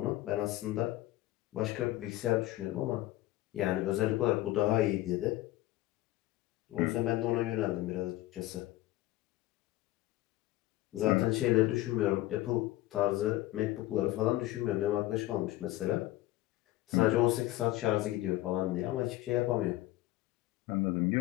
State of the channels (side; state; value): right; quieter; 16.5 dB